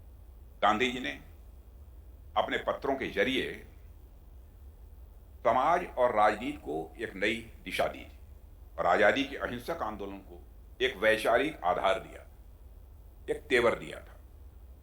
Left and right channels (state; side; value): identical; both; correlation 1.00